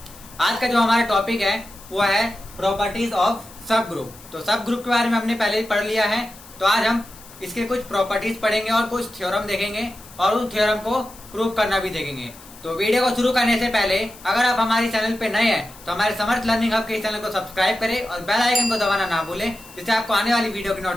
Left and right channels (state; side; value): noise; left; hiss, 20 dB below the sound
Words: आज का जो हमारा टॉपिक है वो है प्रॉपर्टीज ऑफ सब ग्रुप। तो सब ग्रुप के बारे में हमने पहले ही पढ़ लिया है, तो आज हम इसके कुछ प्रॉपर्टीज पढ़ेंगे और कुछ थ्योरम देखेंगे और उस थ्योरम को प्रूव करना भी देखेंगे। तो वीडियो को शुरू करने से पहले अगर आप हमारे चैनल पे नए हैं तो हमारे समर्थ लर्निंग हब के इस चैनल को सब्सक्राइब करें और बेल आइकन को दबाना ना भूलें, जिससे आपको आने वाली वीडियो की